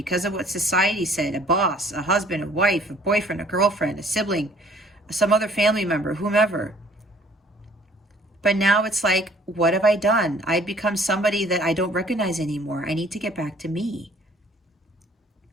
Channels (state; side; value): normal; both; correlation 0.57